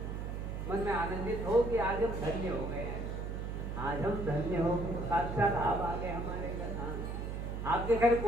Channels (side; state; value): right; noise; hum, 4 dB below the sound